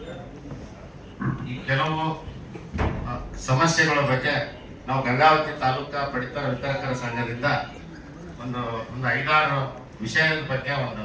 ಈ ಕೆಲವು ಸಮಸ್ಯೆಗಳ ಬಗ್ಗೆ ನಾವು ಗಂಗಾವತಿ ತಾಲೂಕಾ ಪಡಿತರ ವಿತರಕರ ಸಂಘದಿಂದ ಒಂದು 5-6 ವಿಷಯದ ಬಗ್ಗೆ ಒಂದು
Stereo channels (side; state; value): both; identical; correlation 1.00